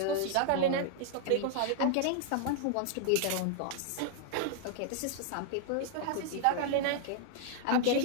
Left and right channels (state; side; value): different; both; correlation 0.00